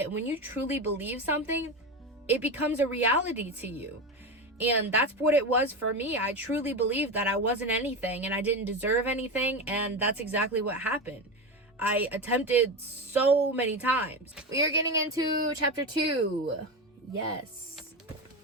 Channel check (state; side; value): normal; both; correlation 0.19